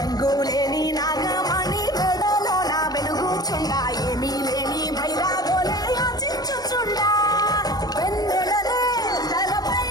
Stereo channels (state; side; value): late; right; 0.19 ms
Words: నాగమణి మెడలో నా వెలుగుచుండ ఏమీ లేని భైరాగోలే యాచించుచుండా వెన్నెలనే తలపై